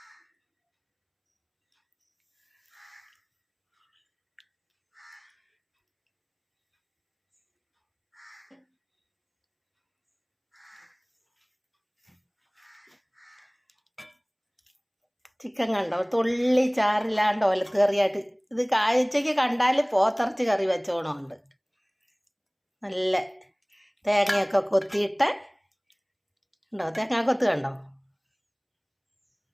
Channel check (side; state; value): both; identical; correlation 1.00